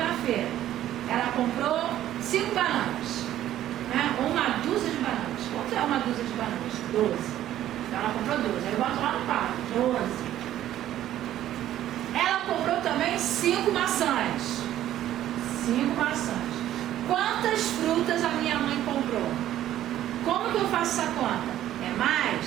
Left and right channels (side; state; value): left; quieter; 12.6 dB